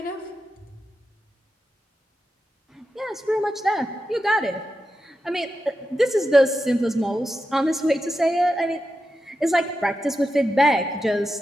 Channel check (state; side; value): normal; both; correlation 0.89